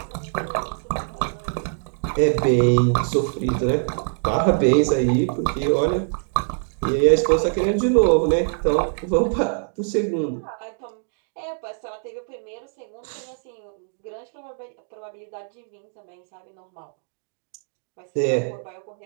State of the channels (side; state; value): left; silent; digital silence